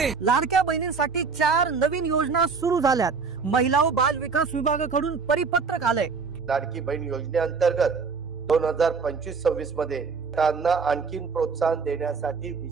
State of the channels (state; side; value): quieter; left; 5.1 dB